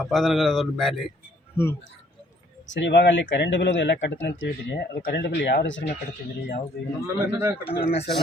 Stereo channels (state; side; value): normal; both; correlation 0.62